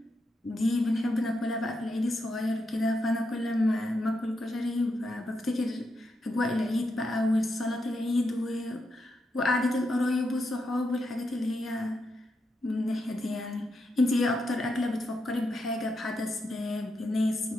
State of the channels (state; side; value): normal; both; correlation 0.84